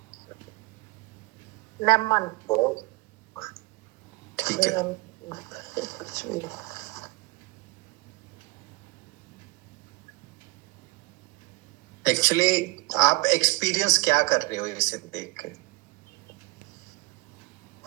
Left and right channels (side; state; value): left; quieter; 23.6 dB